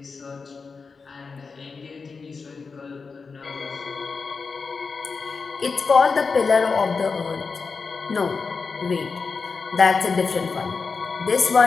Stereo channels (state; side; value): quieter; right; 4.8 dB